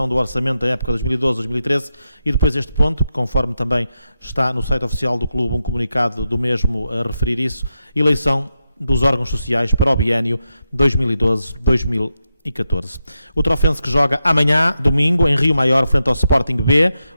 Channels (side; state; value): both; inverted; correlation -0.88